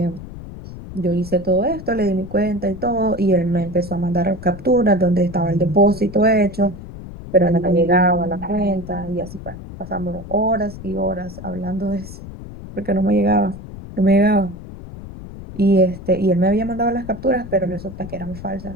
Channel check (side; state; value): left; noise; rumble, 13 dB below the sound